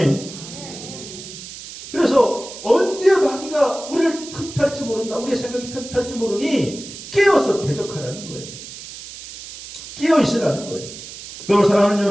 그래서 언제 마귀가 우리를 틈탈지 모른다. 우리의 생각이 틈탈지 모르니 깨어서 대적하라는 거예요. 깨어 있으라는 거예요. 그럼 사랑하는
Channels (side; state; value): right; noise; hiss, 13 dB below the sound